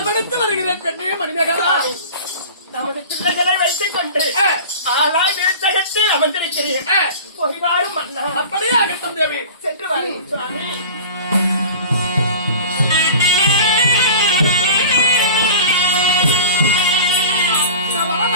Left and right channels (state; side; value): inverted; both; correlation -0.37